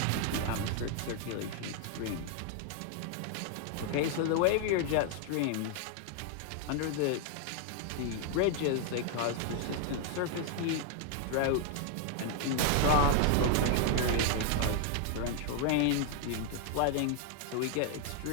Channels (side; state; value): both; different; correlation 0.00